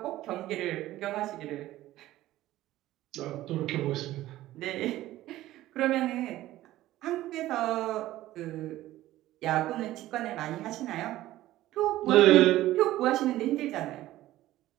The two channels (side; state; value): left; quieter; 15.3 dB